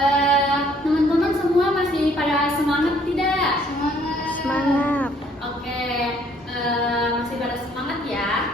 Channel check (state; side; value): normal; both; correlation 0.62